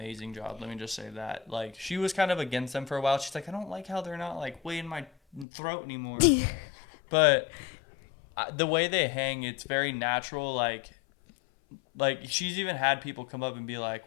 job. Let me just say that. Like, she was kind of against them for a while. She's like, I don't like how they're not like way in my throat anymore. But the way they hang, it's very natural. Like she's even had people come up and be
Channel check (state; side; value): drops out; right; at 5.5 s